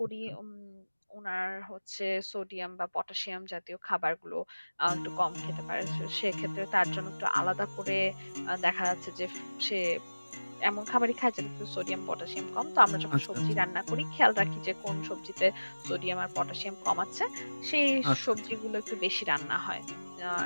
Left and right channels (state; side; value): inverted; both; correlation -1.00